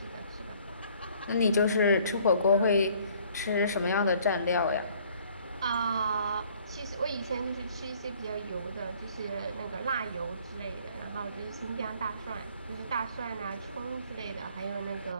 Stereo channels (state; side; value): inverted; both; correlation -0.58